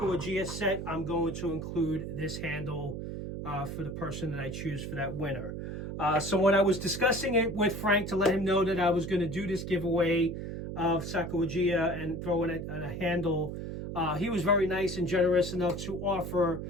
set, I'm going to include this handle for the person that I choose for that winner. So when I was discussing it with Frank to let him know that I was going to do this giveaway of Sacagawea and throw in a handle, he was very nice and generous enough to offer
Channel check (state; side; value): noise; right; hum, 6 dB below the sound